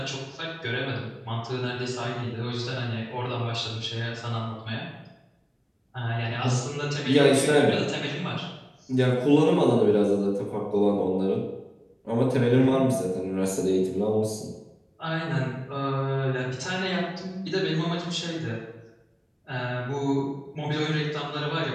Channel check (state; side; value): identical; both; correlation 1.00